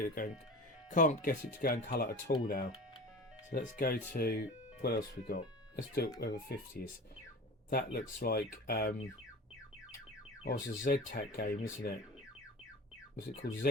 it to go in colour at all now. So let's go to, what else we got? Let's do it over 50s. That looks like it's a Z-Tac game, isn't it? Was it called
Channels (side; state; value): both; normal; correlation 0.35